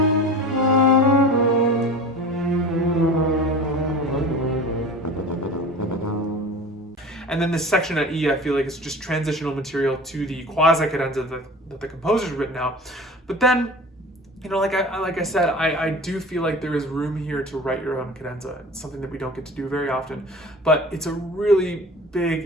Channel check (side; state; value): both; normal; correlation 0.37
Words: And then this section at E, I feel like it's just transitional material to the quasi cadenza that the composer's written out. But then, like I said, I do feel like there is room here to write your own cadenza. It's something that we don't get to do very often, but it's a really